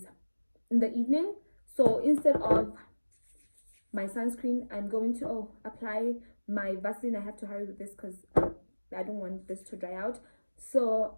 in the evening, so instead of my sunscreen, I'm going to apply my Vaseline. I have to hurry with this because I don't want this to dry out.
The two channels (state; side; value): inverted; both; correlation -1.00